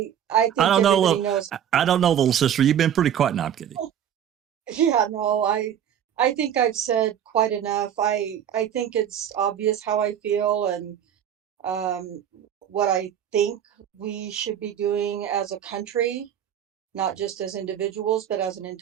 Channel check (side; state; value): left; quieter; 9.5 dB